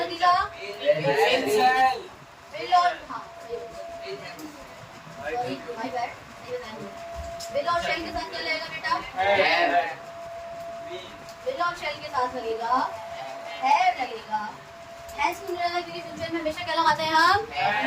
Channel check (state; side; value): identical; both; correlation 1.00